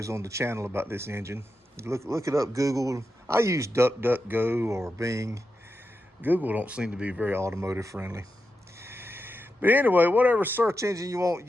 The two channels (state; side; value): normal; both; correlation 0.88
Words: on the channel about this engine. Look it up, Google. I use DuckDuckGo or Bing. Google don't seem to be very automotive friendly. But anyway, whatever search engine you want,